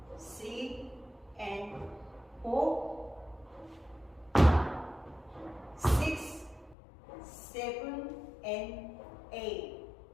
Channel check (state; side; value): drops out; right; at 6.8 s